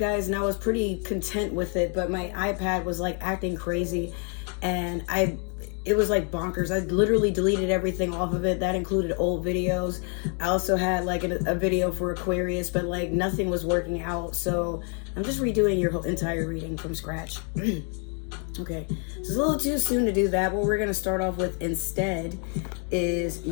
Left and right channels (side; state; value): right; quieter; 39.7 dB